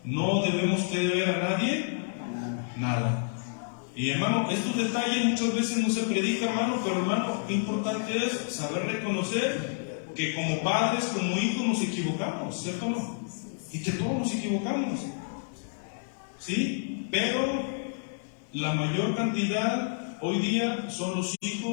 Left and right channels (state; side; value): silent; right; digital silence